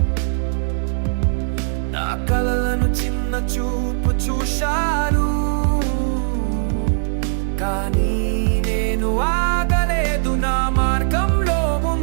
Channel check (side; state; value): left; silent; digital silence